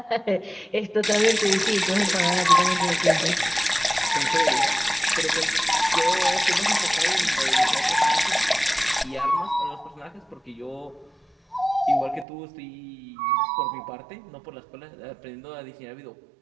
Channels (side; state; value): left; drops out; at 12.2 s